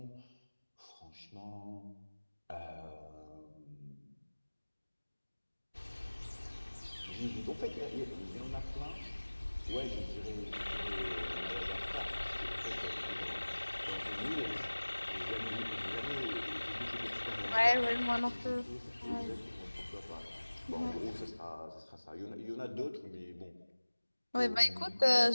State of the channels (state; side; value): inverted; both; correlation -1.00